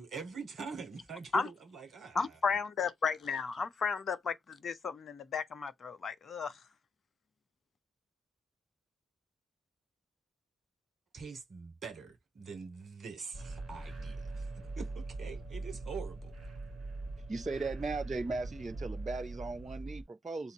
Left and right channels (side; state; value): both; normal; correlation 0.78